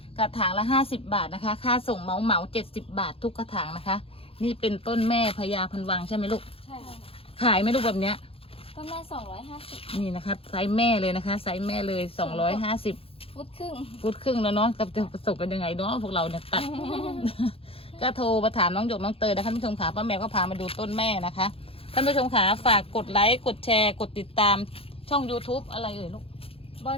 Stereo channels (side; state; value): right; late; 0.27 ms